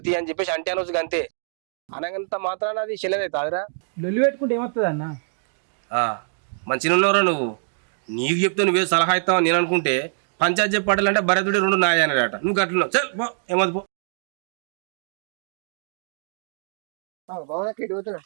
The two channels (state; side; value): silent; left; digital silence